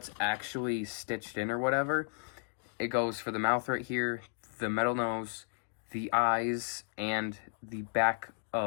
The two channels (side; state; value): right; silent; 55 dB below the other